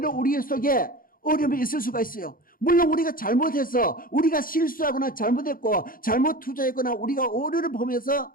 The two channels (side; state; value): right; late; 0.41 ms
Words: 우리 속에 어려움이 있을 수가 있어요. 물론 우리가 잘못해서 우리가 실수하거나 잘못했고 잘못 투자했거나 우리가 오류를 보면서